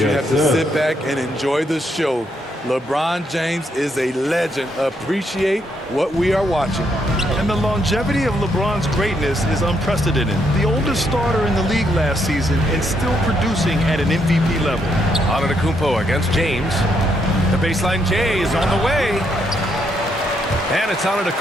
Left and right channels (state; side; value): normal; both; correlation 0.76